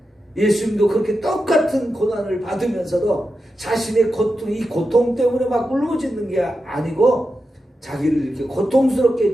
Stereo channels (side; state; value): both; normal; correlation 0.89